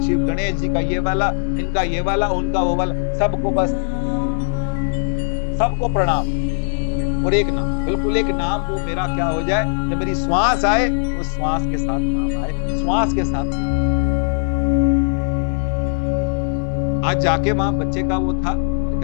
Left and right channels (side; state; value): right; silent; digital silence